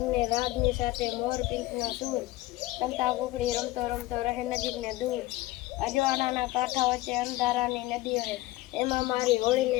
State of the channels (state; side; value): quieter; right; 17.8 dB